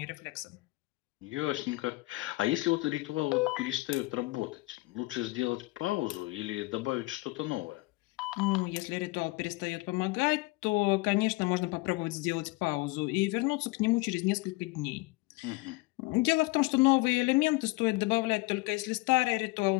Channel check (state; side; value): quieter; right; 22.7 dB